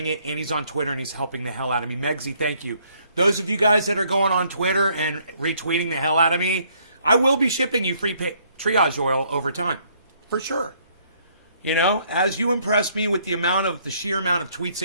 it, and he's on Twitter, and he's helping the hell out of me. Megsy, thank you. Those of you guys that are going on Twitter and retweeting the hell out of me, I will be shipping you free triage oil over time. For sure. As you impress me with the sheer amount of tweets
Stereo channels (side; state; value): both; inverted; correlation -0.66